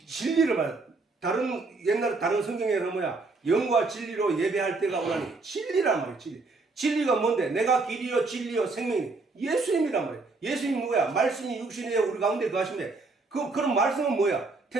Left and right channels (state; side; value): quieter; left; 3.7 dB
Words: 진리를 말해. 옛날 다른 성경에는 뭐야? 영과 진리로 예배할 때가 오나니, 진리란 말이야. 진리가 뭔데? 내가 길이요 진리요 생명이 예수님이란 말이야. 예수님 누구야? 말씀이 육신에 우리 가운데 거하시네. 그런 말씀은 뭐야?